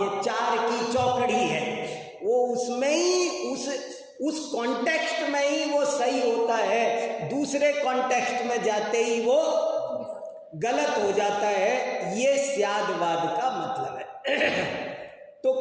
ये चार की चौकड़ी है, वो उसमें ही उस कॉन्टेक्स्ट में ही वो सही होता है, दूसरे कॉन्टेक्स्ट में जाते ही वो गलत हो जाता है। ये स्यादवाद का मतलब है। तो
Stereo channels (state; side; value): identical; both; correlation 1.00